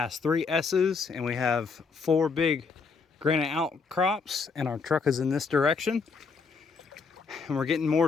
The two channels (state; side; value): quieter; right; 5.0 dB